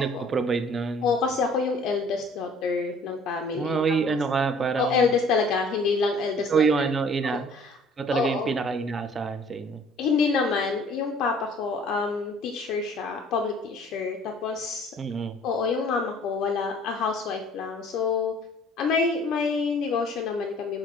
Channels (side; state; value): both; normal; correlation 0.53